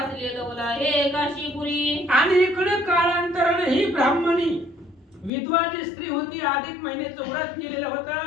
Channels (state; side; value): drops out; right; at 5.3 s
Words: लवला हे काशीपुरी. आणि इकडे काळांतराने ही ब्राह्मणी विधवा जी स्त्री होती, अधिक महिन्याचं व्रत केलेलं